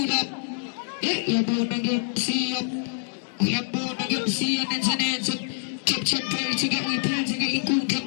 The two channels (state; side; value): silent; right; digital silence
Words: Eh, you're born again, see up. We are born again, see and answer. Chop, prayer to get, we pray to get in Kuka.